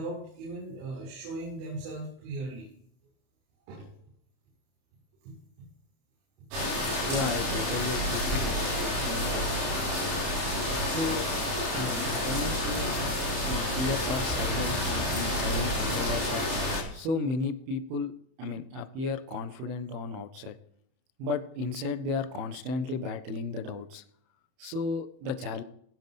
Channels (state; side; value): late; left; 31 ms